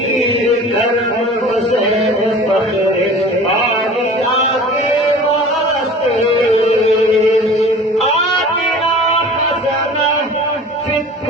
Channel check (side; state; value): both; normal; correlation 0.42